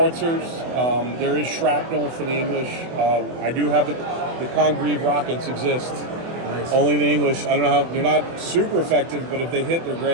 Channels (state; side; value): late; left; 24 ms